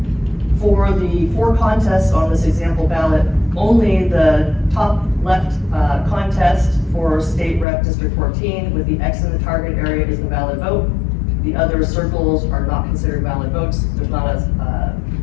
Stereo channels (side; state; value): right; drops out; at 7.7 s